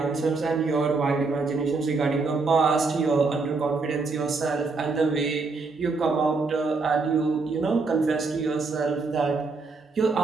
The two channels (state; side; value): quieter; left; 4.1 dB